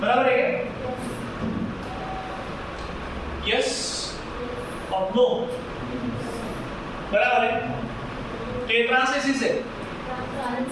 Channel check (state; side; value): identical; both; correlation 1.00